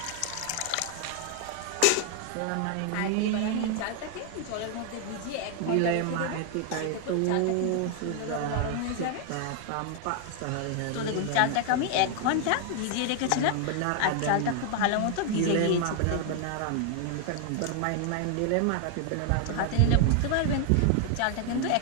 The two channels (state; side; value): different; both; correlation 0.00